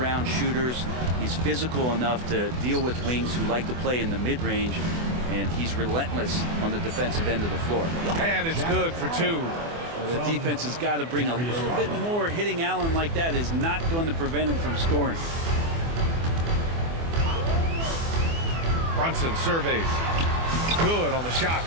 shooters. He's physical enough to deal with wings who like to play in the mid-range. And he's relentless on the defensive end of the floor. And it's good for 2. Well, the defense has got to bring a little bit more. Hitting Allen like that is not going to prevent him from scoring. Brunson surveys. Good on the shot.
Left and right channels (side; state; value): left; late; 24 ms